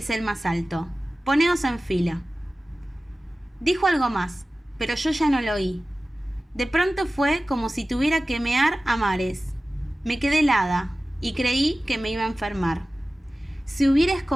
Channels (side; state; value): both; normal; correlation 0.96